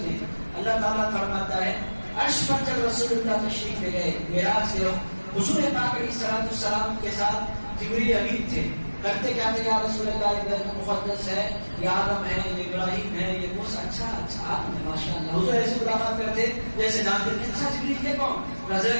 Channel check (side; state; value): both; inverted; correlation -1.00